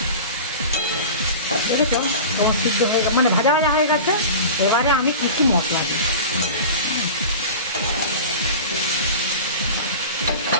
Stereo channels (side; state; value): both; inverted; correlation -0.33